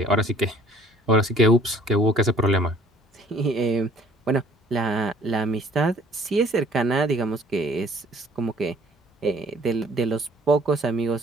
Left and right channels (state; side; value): normal; both; correlation 0.55